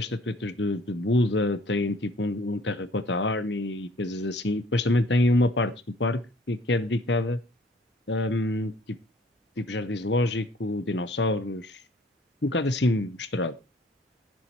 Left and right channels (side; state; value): both; normal; correlation 0.56